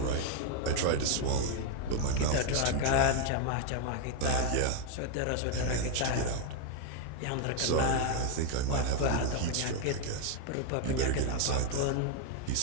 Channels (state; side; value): different; both; correlation 0.01